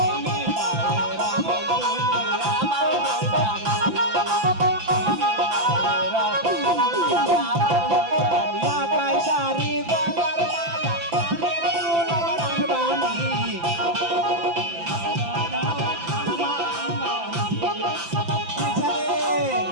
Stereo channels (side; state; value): left; late; 5.9 ms